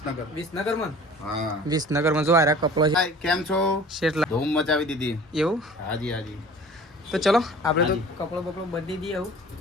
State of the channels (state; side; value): normal; both; correlation 0.45